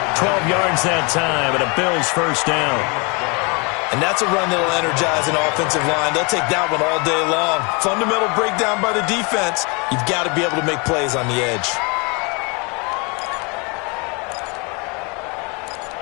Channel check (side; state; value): right; quieter; 31.2 dB